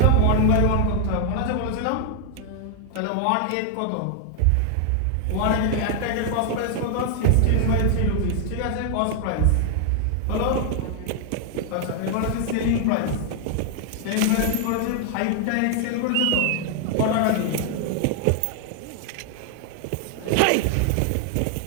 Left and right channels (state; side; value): different; both; correlation 0.00